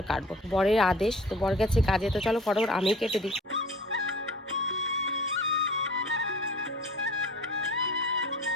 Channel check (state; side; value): normal; both; correlation 0.45